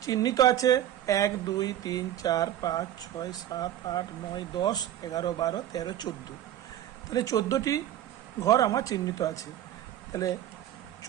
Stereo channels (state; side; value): quieter; left; 11.9 dB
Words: চিহ্নিত আছে 1 2 3 4 5 6 7 8 9 10 11 12 13 14। তাহলে 14টি ঘর আমার চিহ্নিত আছে। তাহলে